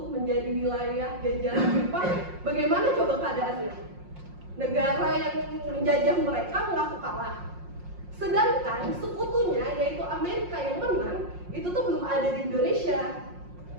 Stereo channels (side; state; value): left; late; 5.6 ms